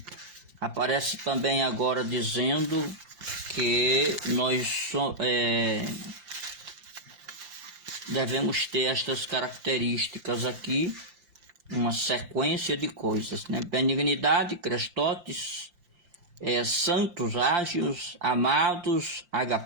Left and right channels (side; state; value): left; late; 5.7 ms